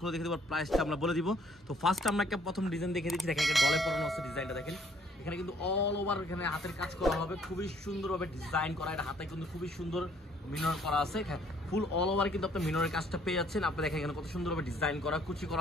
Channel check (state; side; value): normal; both; correlation 0.62